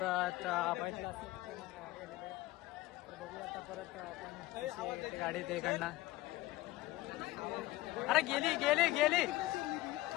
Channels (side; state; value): right; quieter; 18.3 dB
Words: परत गाडी ते इकडनं. अरे गेली